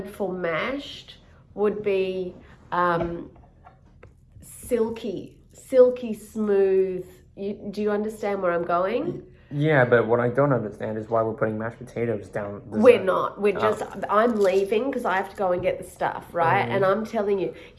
for mashed would be silky, smooth. Do you understand where I'm going? Yeah, but what I don't understand is why we're putting mashed potatoes down. We're not. We're just. I'm leaving because I have to go and get the stuff, right? And I'm telling you,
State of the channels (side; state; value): both; identical; correlation 1.00